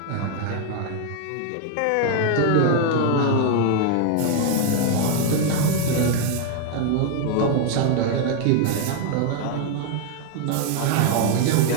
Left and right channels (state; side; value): different; both; correlation 0.00